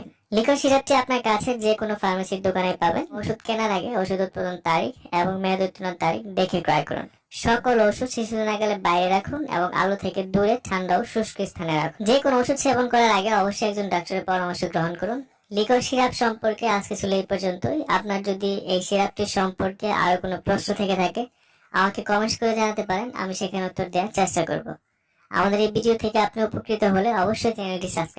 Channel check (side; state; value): both; identical; correlation 1.00